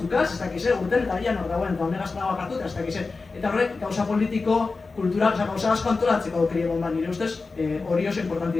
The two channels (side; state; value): right; quieter; 4.0 dB